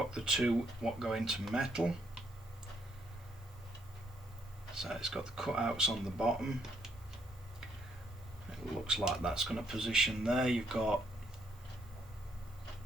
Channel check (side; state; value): both; normal; correlation 0.72